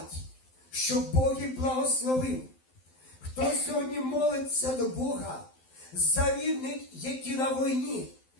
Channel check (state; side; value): late; right; 12 ms